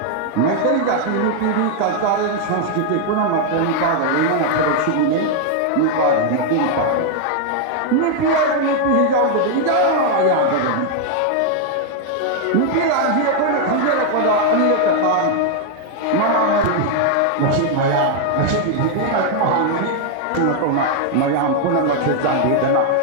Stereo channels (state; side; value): different; both; correlation 0.00